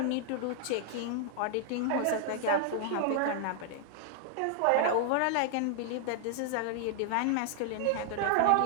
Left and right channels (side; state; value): both; different; correlation 0.00